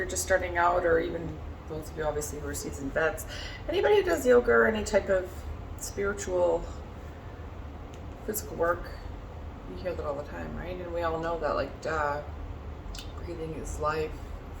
just starting out, or even those of you obviously who are seasoned vets, anybody who does yoga or any type of spiritual, physical work, you hear that all the time, right? And we all know that, like, breathing is life.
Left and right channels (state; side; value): identical; both; correlation 1.00